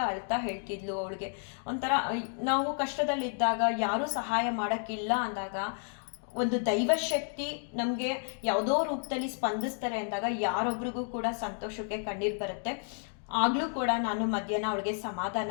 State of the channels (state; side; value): silent; right; 57 dB below the other